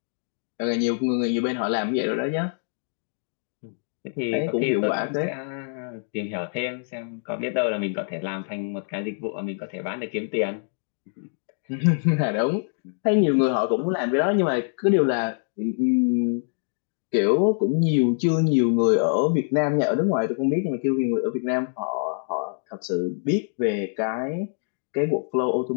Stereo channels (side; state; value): right; silent; 61 dB below the other